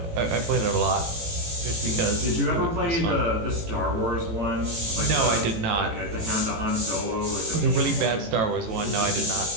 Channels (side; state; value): left; late; 18 ms